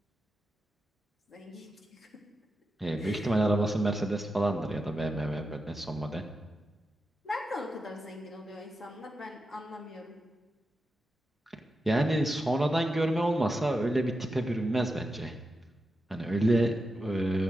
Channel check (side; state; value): both; normal; correlation 0.88